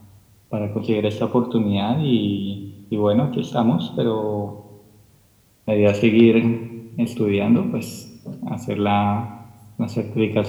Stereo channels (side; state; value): both; identical; correlation 1.00